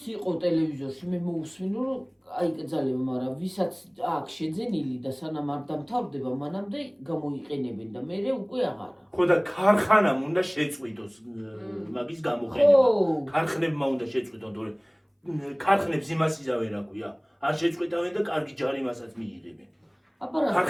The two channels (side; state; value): both; identical; correlation 1.00